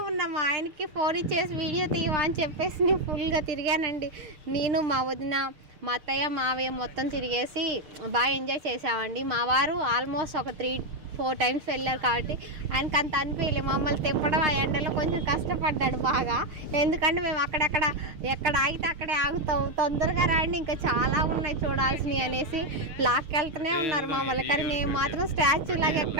ఉన్నా. మా ఆయనకి ఫోన్ ఇచ్చేసి వీడియో తీయవా అని చెప్పేసి నేను ఫుల్గా తిరిగానండి. నేను మా వదిన మా అత్తయ్య మావయ్య మొత్తం తిరిగేసి బాగా ఎంజాయ్ చేసామండి. మా వారు ఆల్మోస్ట్ ఒక 3-4 టైమ్స్ వెళ్ళారు కాబట్టి ఆయనకు అంత అనిపించలేదు. మమ్మల్ని తిప్పడం ఆ ఎండలో కొంచెం కష్టపడ్డాడు బాగా. ఎందుకంటే మేము ఎక్కడ ఆగితే అక్కడే ఆగుతాం, తొందరగా రండి ఇంకా చాలా ఉన్నాయి చూడాల్సినవి అనేసి లాక్కెళ్తూనే ఉన్నారు మమ్మల్ని. కానీ మేము మాత్రం స్టాచ్యూ లాగా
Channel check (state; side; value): late; left; 6.5 ms